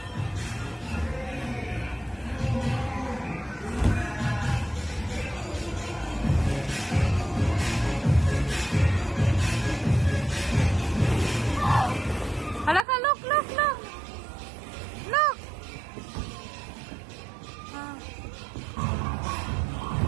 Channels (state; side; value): drops out; left; at 12.9 s